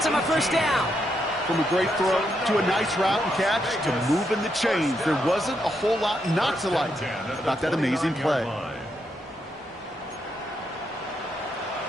him a first down. From a great throw to a nice route and catch to moving the chains, there wasn't a whole lot not to like about that amazing play.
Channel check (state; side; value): normal; both; correlation 0.80